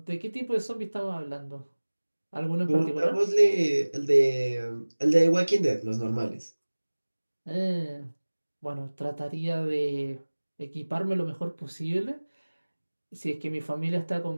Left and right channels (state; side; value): inverted; both; correlation -1.00